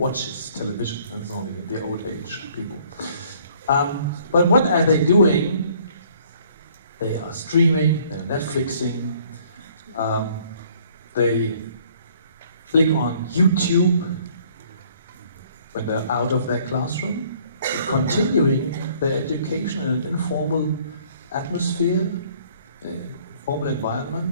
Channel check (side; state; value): both; inverted; correlation -0.59